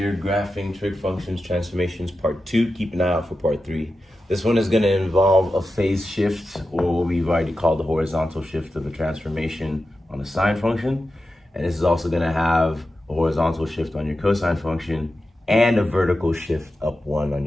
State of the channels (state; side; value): normal; both; correlation 0.91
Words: graphing trig functions transformations part 2. Keep an eye out for part 3. This one is going to involve a phase shift, or what we've already called the horizontal shift of a transformation on a sine function. And this is also going to have a horizontal shift on your cosine function and a vertical shift up 1 on